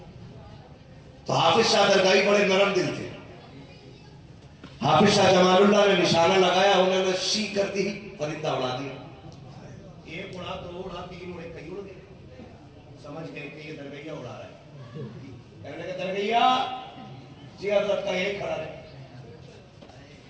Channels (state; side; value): identical; both; correlation 1.00